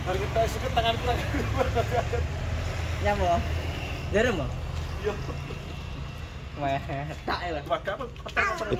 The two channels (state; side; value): identical; both; correlation 1.00